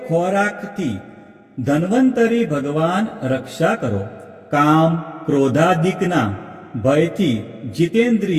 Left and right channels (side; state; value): both; identical; correlation 1.00